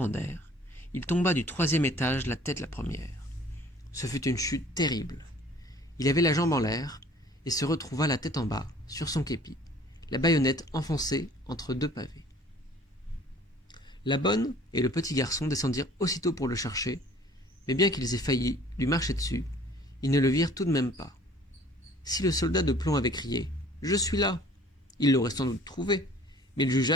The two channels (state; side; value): normal; both; correlation 0.52